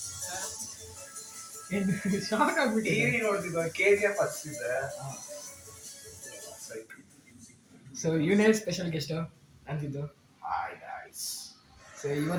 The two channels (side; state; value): both; identical; correlation 1.00